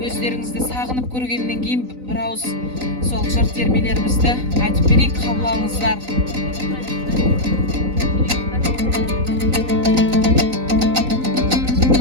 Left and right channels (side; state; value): left; late; 3.9 ms